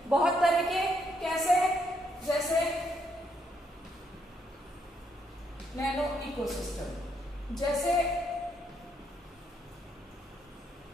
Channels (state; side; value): normal; both; correlation 0.75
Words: बहुत तरह के कैसे, जैसे नैनो इकोसिस्टम, जैसे